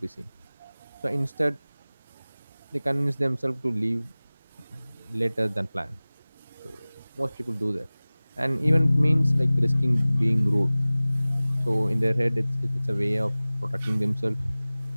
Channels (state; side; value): inverted; both; correlation -0.99